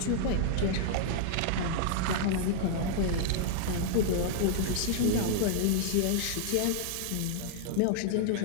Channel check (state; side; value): different; both; correlation -0.01